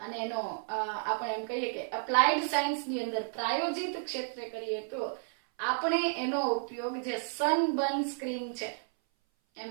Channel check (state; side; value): silent; left; 56 dB below the other